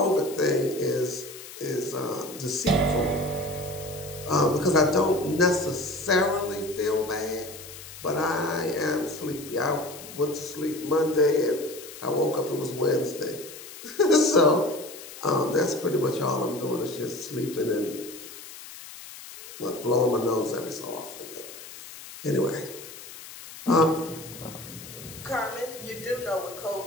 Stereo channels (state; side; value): noise; left; hiss, 14 dB below the sound